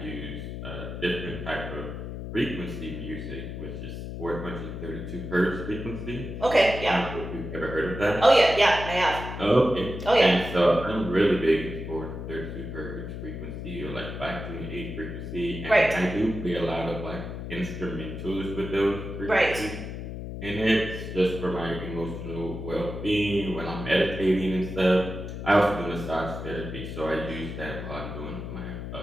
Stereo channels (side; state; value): left; noise; hum, 7 dB below the sound